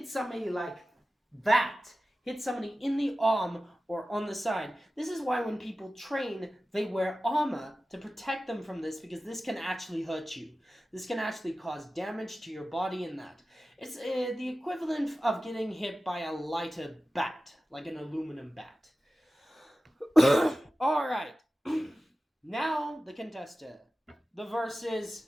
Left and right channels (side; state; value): both; normal; correlation 0.95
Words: somebody like that, hit somebody in the arm or on the side, this is why when people train, they wear armor to protect them from this, because this can actually hurt you. This can actually cause damage to your body in that. It's the equivalent of getting hit by a lighter bat, like an aluminum bat. Alright, now the contester, the versus